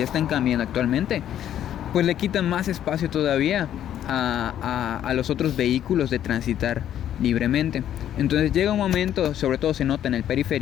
están cambiando actualmente, pues le quitan más espacio todavía a los otros vehículos de transitar libremente. Entonces llega un momento, sobre todo se nota en el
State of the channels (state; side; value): quieter; right; 10.8 dB